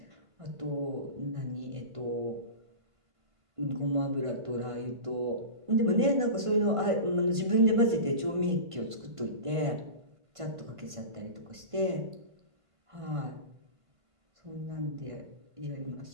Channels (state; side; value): late; left; 1.5 ms